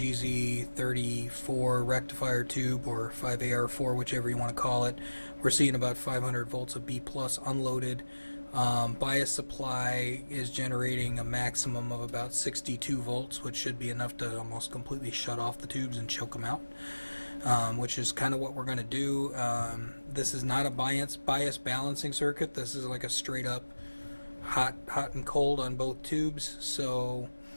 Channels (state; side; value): inverted; both; correlation -1.00